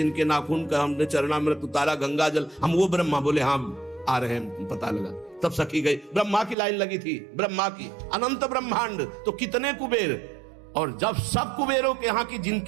नाखून का हमने चरणामृत उतारा गंगा जल, हम वो ब्रह्मा। बोले हाँ आ रहे हैं, पता लगा। तब सखी गई, ब्रह्मा की लाइन लगी थी, ब्रह्मा की। अनंत ब्रह्मांड तो कितने कुबेर। और जब सब कुबेरों के यहाँ की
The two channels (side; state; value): left; drops out; at 6.6 s